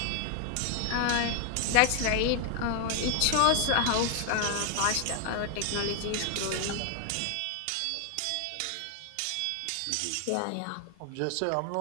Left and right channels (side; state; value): both; different; correlation 0.00